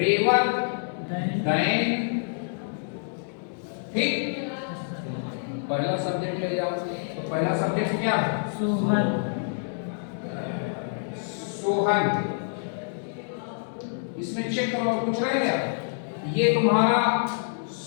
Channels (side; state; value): right; silent; digital silence